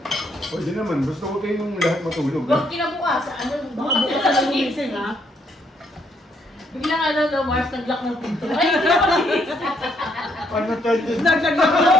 Pwede naman, gusto ko kayong lahat matulog. Huwag kinabukas, ano, baka bukas na lang gumising, ha? Biglang ano, no, Mars, nag-lock ng pinto. Ay, hindi ako nagising. Ano charges? Naglag na ako.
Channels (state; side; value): normal; both; correlation 0.72